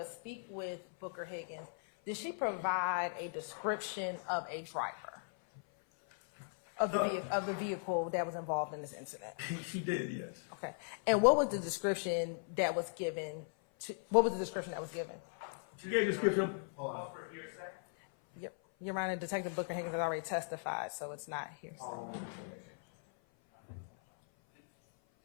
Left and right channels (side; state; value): right; silent; 52 dB below the other